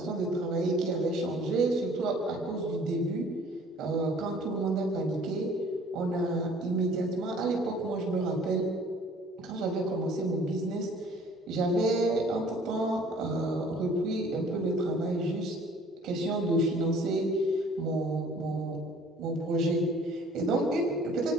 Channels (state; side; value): normal; both; correlation 0.54